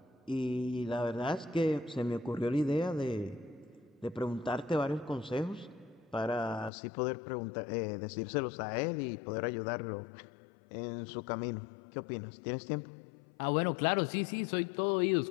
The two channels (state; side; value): drops out; right; at 6.7 s